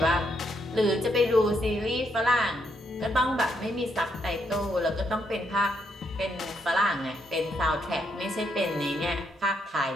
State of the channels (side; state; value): both; normal; correlation 0.77